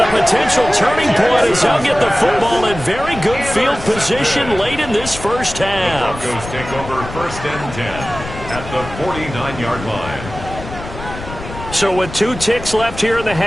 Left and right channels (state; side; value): noise; left; rumble, 11 dB below the sound